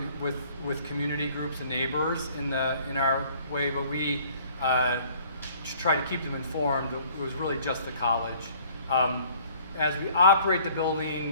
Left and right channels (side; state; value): both; inverted; correlation -0.56